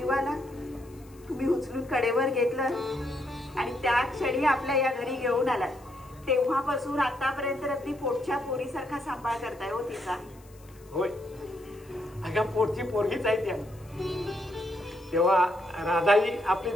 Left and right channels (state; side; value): noise; left; hiss, 27 dB below the sound